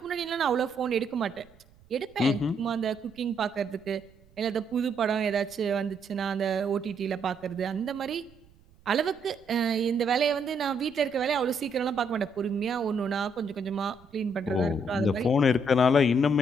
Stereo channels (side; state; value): right; noise; rumble, 28 dB below the sound